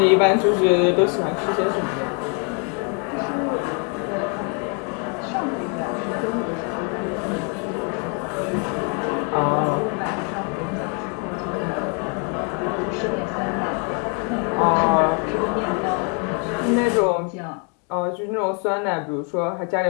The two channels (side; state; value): right; quieter; 37.6 dB